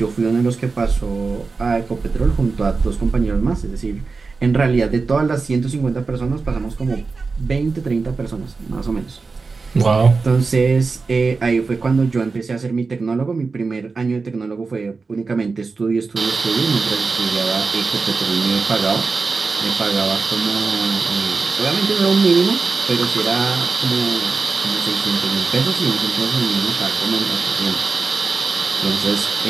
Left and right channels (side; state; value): left; quieter; 4.3 dB